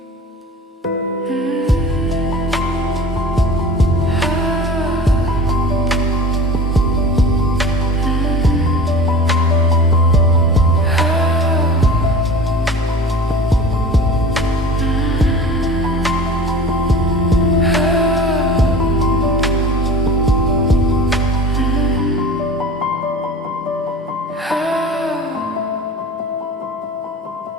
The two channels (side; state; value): both; normal; correlation 0.38